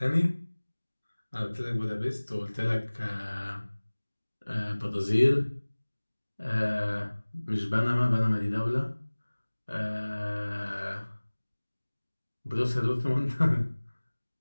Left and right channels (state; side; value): inverted; both; correlation -1.00